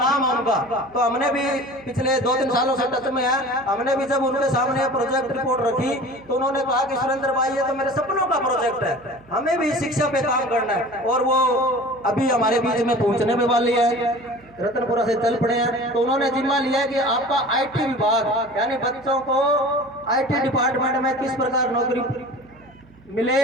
है उनका, तो हमने भी पिछले 2-3 सालों से टच में है। हमने भी जब उनके सामने प्रोजेक्ट रिपोर्ट रखी तो उन्होंने कहा कि सुरेंद्र भाई ये तो मेरे सपनों का प्रोजेक्ट है, हमें भी शिक्षा पे काम करना है। और वो अभी हमारे बीच में पहुंचने में वाली है, रतनपुरा से चल पड़े हैं। तो उन्होंने जिम्मा लिया कि आपका IT विभाग, यानी बच्चों को IT डिपार्टमेंट में किस प्रकार नौकरी मिले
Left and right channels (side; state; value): right; noise; hum, 26 dB below the sound